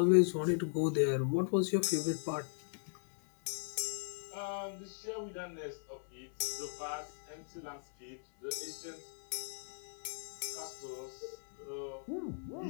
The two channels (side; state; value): right; silent; 53 dB below the other